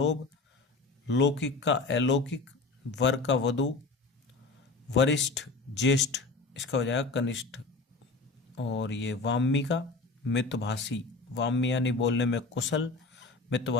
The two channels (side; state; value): right; quieter; 3.7 dB